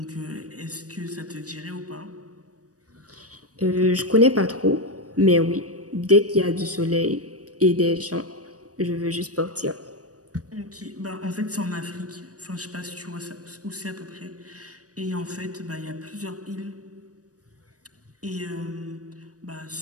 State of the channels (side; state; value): left; late; 0.67 ms